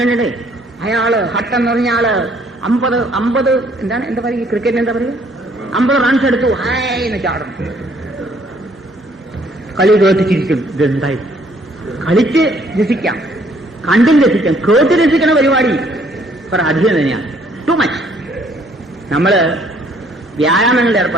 അയാള് ഹട്ട് എന്ന് പറഞ്ഞ ആള് 50 എന്താ പറയുക, ക്രിക്കറ്റിന് എന്താ പറയുക, 50 റൺസ് എടുത്തു, ഹായ് എന്ന് ചാടും. കളി കേട്ട് ചിരിക്കും. ഇതെന്തായി? കളിച്ച് രസിക്കാം, കണ്ടും രസിക്കാം. കേട്ട് രസിക്കണ പരിപാടി കുറെ അധികം തന്നെയാണ്. Too much. നമ്മള് വ്യായാമങ്ങളിൽ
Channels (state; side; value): normal; both; correlation 0.64